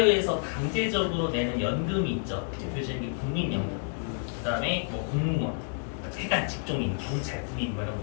강제적으로 내는 연금이 있죠. 대표적인 게 국민연금, 그다음에 뭐 공무원, 대단 직종인, 경찰, 군인 뭐 이런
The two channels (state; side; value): silent; right; 58 dB below the other